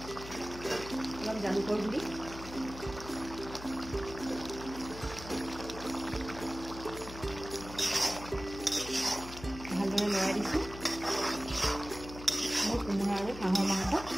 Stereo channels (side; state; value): left; noise; hum, 12 dB below the sound